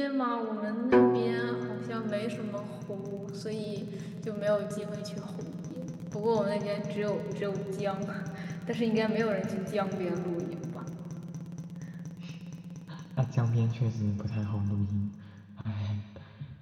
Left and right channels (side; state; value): both; identical; correlation 1.00